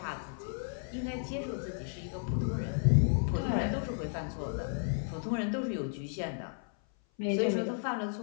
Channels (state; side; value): silent; right; 55 dB below the other